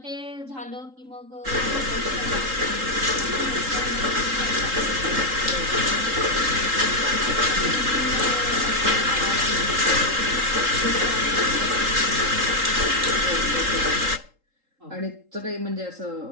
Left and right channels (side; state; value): left; late; 3.8 ms